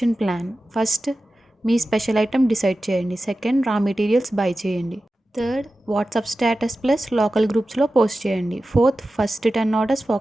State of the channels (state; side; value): normal; both; correlation 0.94